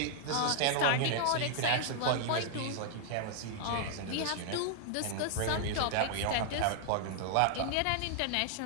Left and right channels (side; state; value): both; different; correlation -0.01